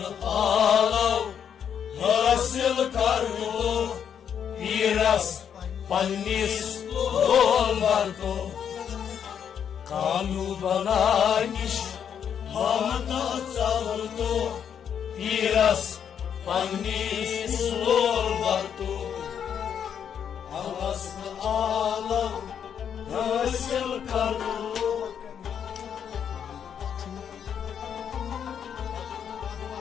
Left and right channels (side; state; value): right; quieter; 8.2 dB